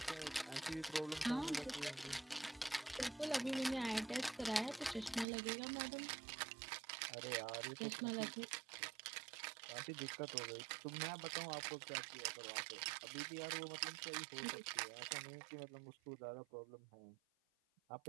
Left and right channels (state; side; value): drops out; left; at 5.2 s